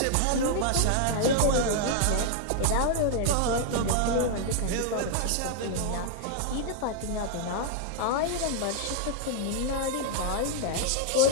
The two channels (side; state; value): both; different; correlation 0.00